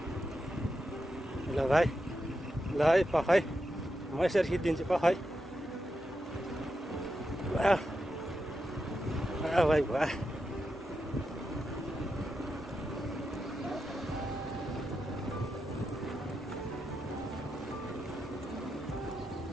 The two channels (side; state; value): both; normal; correlation 0.87